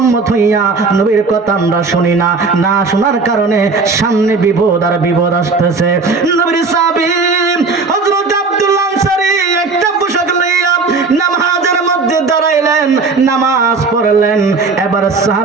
উম্মত হইয়া নবীর কথা আমরা শুনি না। না শোনার কারণে সামনে বিপদ আর বিপদ আসতেছে। নবীর সাহাবী হযরত আব্দুল্লাহ আনসারী একটা পোশাক লইয়া নামাজের মধ্যে দাঁড়াইলেন। নামাজ পড়লেন। এবার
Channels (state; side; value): quieter; left; 4.2 dB